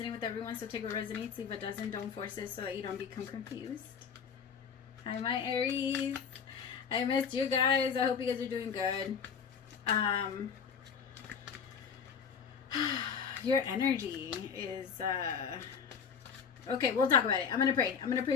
with everyone, so take what resonates. Leave what doesn't. Don't force it so that you don't become confused. Hi, my Aries. I missed you guys. I hope you guys are doing good. Your energy is... Okay, we'll talk about it. I'm going to pray. I'm going to pray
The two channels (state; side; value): quieter; right; 6.6 dB